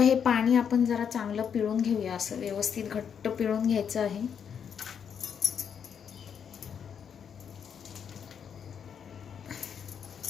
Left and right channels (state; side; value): quieter; right; 7.6 dB